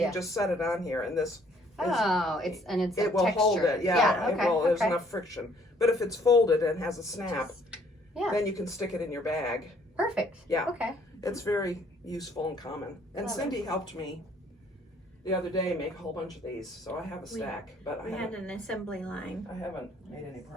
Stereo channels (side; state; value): both; normal; correlation 0.62